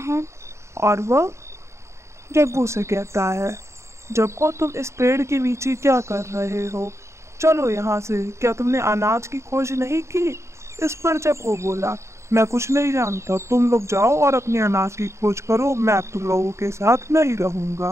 है और वह जग्गू से कहता है, जग्गू तुम इस पेड़ के नीचे क्या कर रहे हो? चलो यहाँ से, क्या तुमने अनाज की खोज नहीं की? इस पर जब वो बोला, मैं कुछ नहीं जानता, तुम लोग जाओ और अपने अनाज की खोज करो, मैं तुम लोगों के साथ नहीं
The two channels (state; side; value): late; left; 0.14 ms